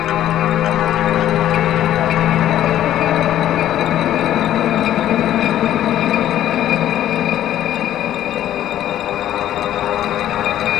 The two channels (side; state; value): right; quieter; 12.1 dB